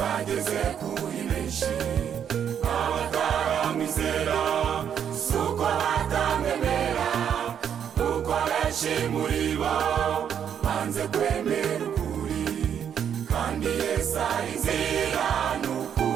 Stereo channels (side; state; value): left; quieter; 8.6 dB